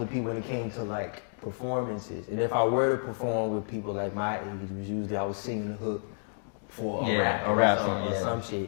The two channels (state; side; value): silent; right; digital silence